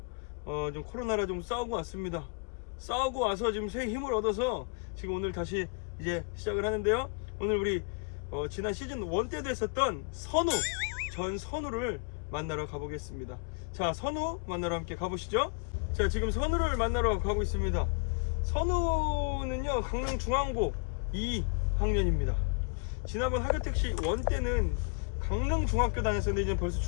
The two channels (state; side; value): quieter; right; 35.7 dB